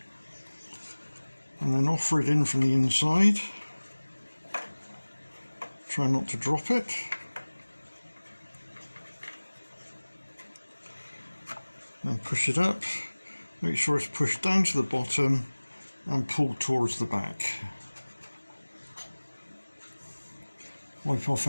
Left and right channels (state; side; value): inverted; both; correlation -1.00